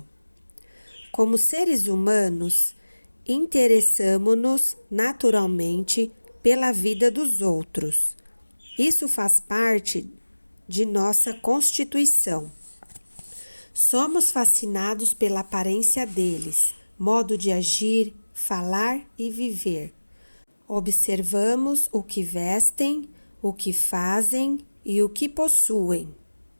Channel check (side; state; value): both; inverted; correlation -1.00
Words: Como seres humanos, interessamo-nos naturalmente pela vida dos outros. Isso faz parte de nossa constituição. Somos fascinados pela aparência deles, modo de agir, falar e viver. Observamos o que vestem, o que fazem e o que possuem.